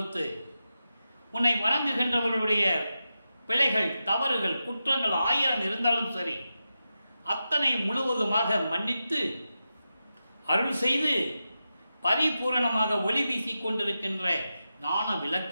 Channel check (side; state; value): both; inverted; correlation -0.90